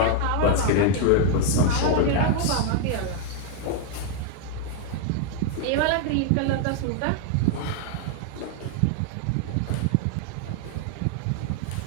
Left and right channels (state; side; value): different; both; correlation 0.00